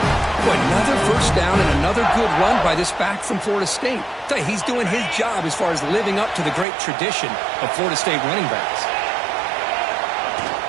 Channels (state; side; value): drops out; left; at 6.7 s